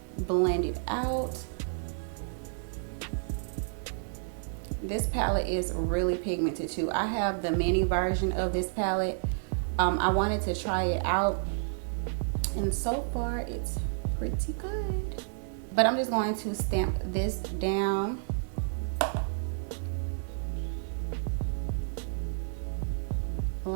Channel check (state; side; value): silent; left; digital silence